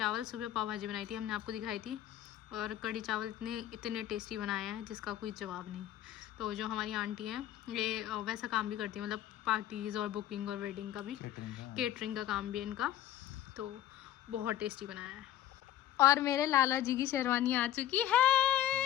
सुबह पाव भाजी बनाई थी, हमने आपको दिखाई थी। और कढ़ी चावल इतने टेस्टी बनाए हैं जिसका कोई जवाब नहीं। तो जो हमारी आंटी हैं ये वैसा काम भी करती है, मतलब पार्टीज़ और बुकिंग और वेडिंग का भी, केटरिंग का काम भी है इनका। तो बहुत टेस्टी बनाया है। और मेरे लाला जी की शेरवानी आ चुकी है।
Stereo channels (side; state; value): right; quieter; 12.3 dB